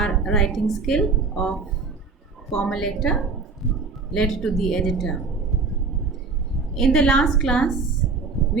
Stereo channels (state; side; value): quieter; left; 4.5 dB